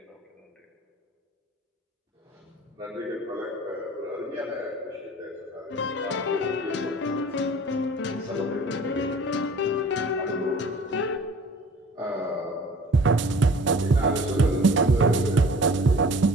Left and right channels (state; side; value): normal; both; correlation 0.47